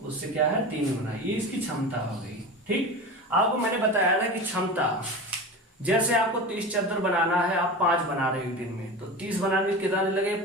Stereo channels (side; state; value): both; normal; correlation 0.29